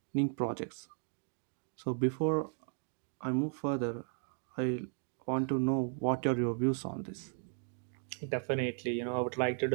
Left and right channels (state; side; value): silent; left; 54 dB below the other